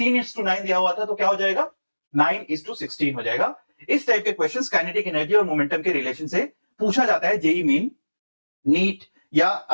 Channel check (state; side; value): inverted; both; correlation -1.00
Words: दिया हुआ था तो क्या हो जाएगा, 9:16 हो जाएगा। इस टाइप के क्वेश्चंस काइनेटिक एनर्जी और मोमेंटम के रिलेशन से पूछा जाता है जेई मेन, नीट या